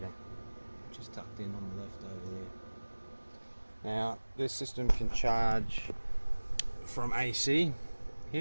which is tucked in on the left over there. Now, this system can charge from AC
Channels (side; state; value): both; inverted; correlation -1.00